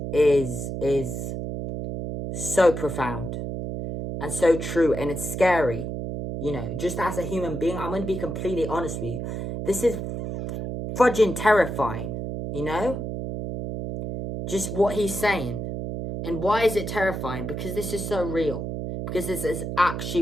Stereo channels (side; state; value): right; noise; hum, 5 dB below the sound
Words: is so profound and so true, and it's scary. You know, just as a human being, I'm going to be completely honest with you. This is fudging terrifying, you know? Just what he's saying. And why is it terrifying? Because this is so real. Because this is actually